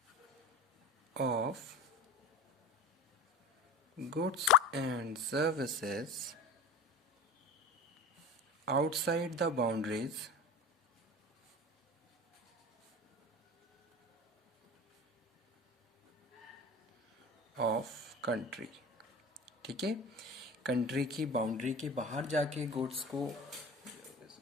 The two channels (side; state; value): both; normal; correlation 0.35